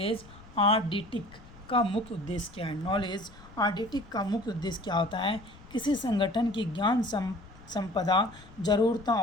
आइडेंटिक का मुख्य उद्देश्य क्या है? नॉलेज आइडेंटिक का मुख्य उद्देश्य क्या होता है? किसी संगठन की ज्ञान संपदा जरूरतों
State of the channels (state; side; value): noise; left; rumble, 21 dB below the sound